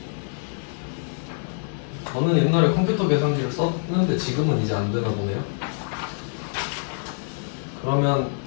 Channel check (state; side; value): silent; right; digital silence